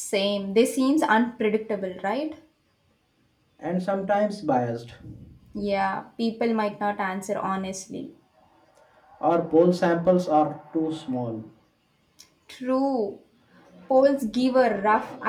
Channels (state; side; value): identical; both; correlation 1.00